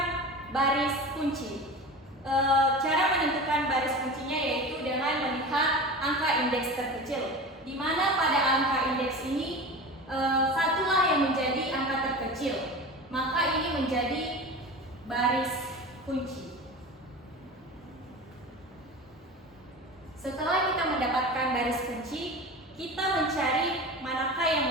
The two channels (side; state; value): both; normal; correlation 0.32